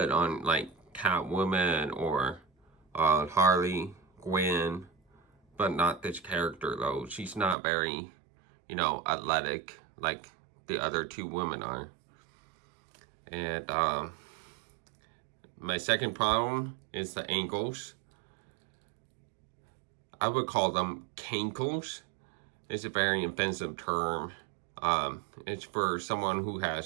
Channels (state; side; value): drops out; left; at 7.6 s